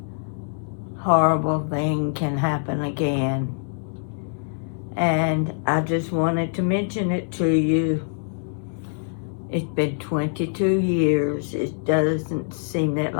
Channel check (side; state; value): right; silent; 62 dB below the other